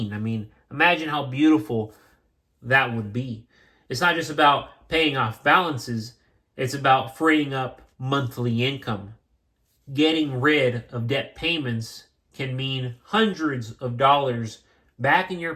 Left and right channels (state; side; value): identical; both; correlation 1.00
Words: I mean, imagine how beautiful that would be. It's not just about paying off balances, it's about freeing up monthly income. Getting rid of debt payments can mean hundreds of dollars back in your